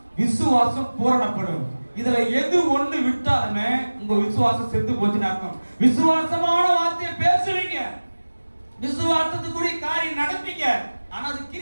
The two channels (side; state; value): both; inverted; correlation -1.00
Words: விசுவாசம் பூரணப்படும். இதுல எது ஒண்ணு விட்டாலுமே உங்க விசுவாசம் செத்து போச்சுன்னு அர்த்தம். விசுவாசமான வார்த்தையை பேசுவீங்க, விசுவாசத்துக்குரிய காரியம் நடப்பீங்க, ஆனா அது